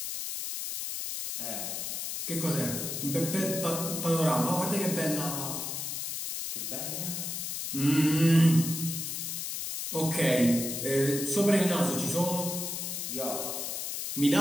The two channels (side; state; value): left; noise; hiss, 4 dB below the sound